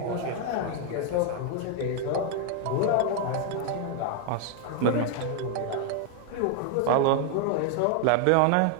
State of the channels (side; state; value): both; different; correlation 0.00